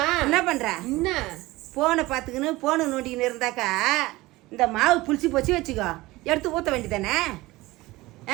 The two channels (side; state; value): left; quieter; 19.8 dB